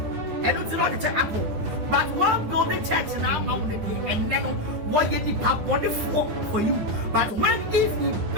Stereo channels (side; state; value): left; late; 9.8 ms